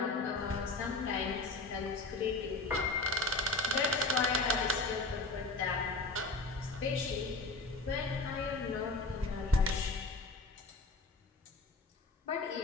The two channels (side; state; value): right; quieter; 3.2 dB